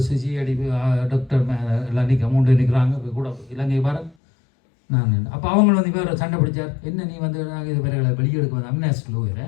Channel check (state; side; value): drops out; right; at 4.2 s